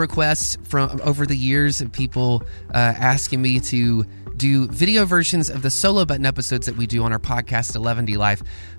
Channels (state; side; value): inverted; both; correlation -1.00